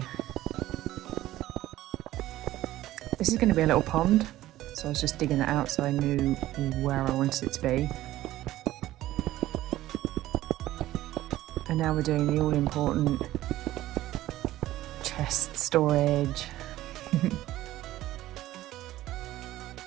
This is going to be a little pond, so I was just digging that out so I knew where I wanted it to be. And now we're doing the all-important chest storage.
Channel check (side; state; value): left; quieter; 15.2 dB